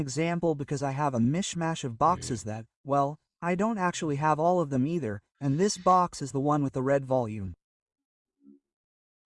because I have a mishmash of boxes that, well, I don't actually have all of them either, and this box is the one with the red volume.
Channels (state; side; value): identical; both; correlation 1.00